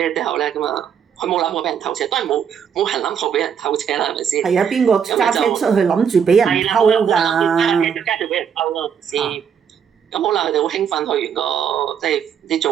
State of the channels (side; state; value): left; quieter; 7.7 dB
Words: 之後咧，咁啊，佢冇諗過俾人偷車，當然冇人諗過俾人偷車啦，係咪先？係啊，邊個揸車出去諗住俾人偷㗎？加住俾人偷咯，先。咁好啦，佢哋好興奮去完個即係唔知